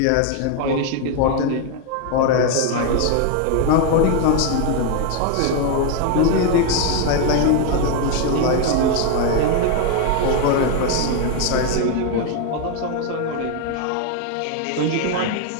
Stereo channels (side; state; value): both; different; correlation 0.01